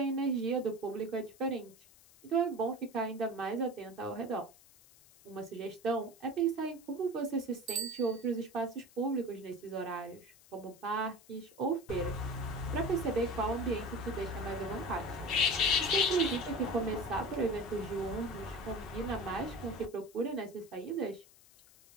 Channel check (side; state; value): left; noise; hiss, 24 dB below the sound